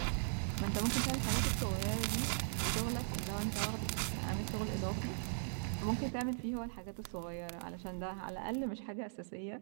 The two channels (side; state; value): left; silent; digital silence